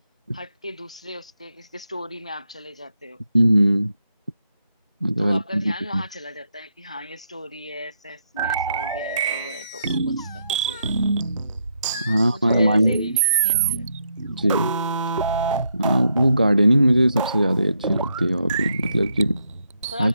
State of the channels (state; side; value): inverted; both; correlation -0.78